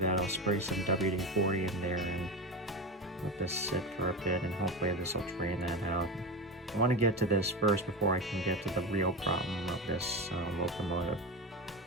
I'll spray some WD-40 in there and let this sit for a bit, and hopefully this will drain that out. I want to get to this first before I can get to the real problem of this locomotive.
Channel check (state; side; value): normal; both; correlation 0.21